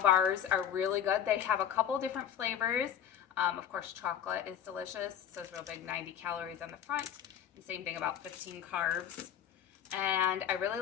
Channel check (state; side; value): quieter; right; 9.5 dB